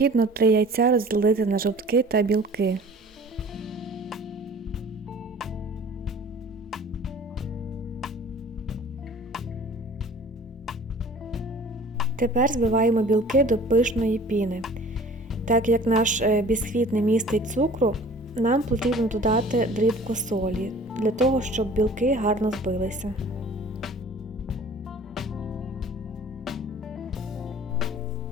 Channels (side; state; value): both; normal; correlation 0.47